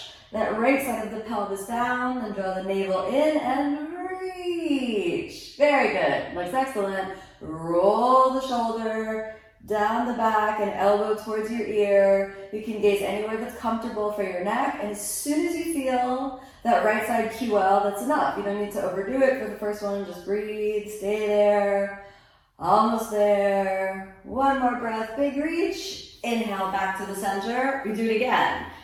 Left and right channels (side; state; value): both; identical; correlation 1.00